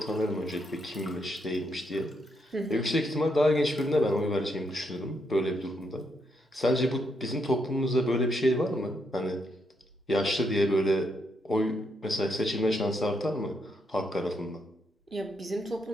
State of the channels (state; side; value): normal; both; correlation 0.78